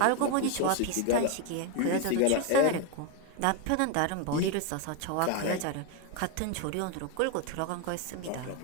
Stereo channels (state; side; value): different; both; correlation 0.01